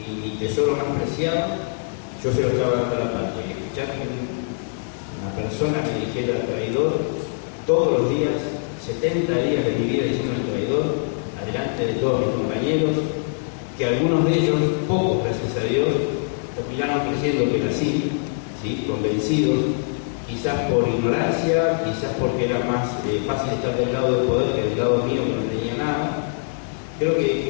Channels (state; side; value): silent; right; 63 dB below the other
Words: tesoro más preciado, yo se lo estaba dando a la patria. Y escuchar que una persona me dijera traidor todos los días, 70 días de mi vida diciendo traidor, adelante de todos mis compañeros, que algunos de ellos, pocos gracias a Dios, terminaron creyendo que era así, ¿sí? Convencidos, quizás por ignorancia, quizás porque era más fácil estar del lado del poder que del lado mío que no tenía nada. Creo